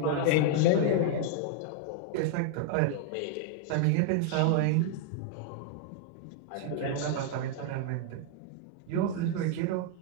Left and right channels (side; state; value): both; different; correlation 0.00